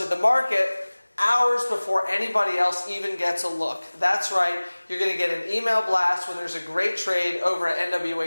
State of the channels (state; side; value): inverted; both; correlation -1.00